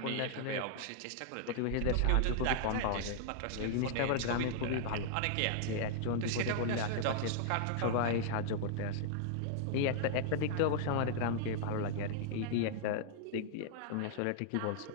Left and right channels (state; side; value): different; both; correlation -0.01